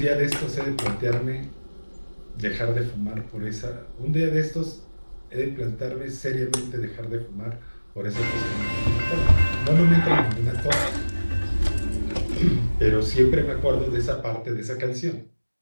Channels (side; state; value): both; inverted; correlation -1.00